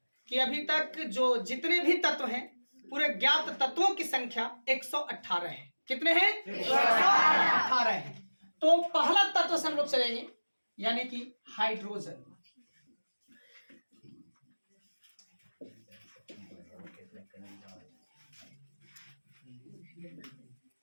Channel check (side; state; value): both; inverted; correlation -1.00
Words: कि अभी तक जो जितने भी तत्व हैं, पूरे ज्ञात तत्वों की संख्या 118 है। कितने हैं? 118 है। तो पहला तत्व से हम लोग चलेंगे, यानी कि हाइड्रोजन।